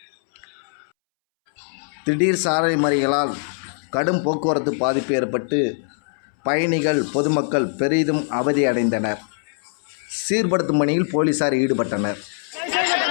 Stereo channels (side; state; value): right; silent; 64 dB below the other